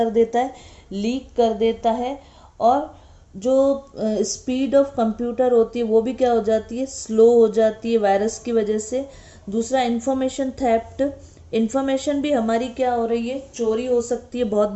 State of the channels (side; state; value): both; identical; correlation 1.00